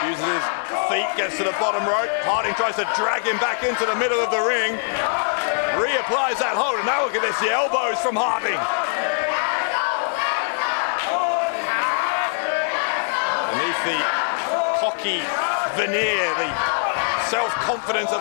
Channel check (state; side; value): silent; right; 64 dB below the other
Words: uses his feet, gets to the bottom rope. Harting tries to drag him back into the middle of the ring. Reapplies that hold, and now look at this, the elbows from Harting. Beneath the cocky veneer, the self-confidence of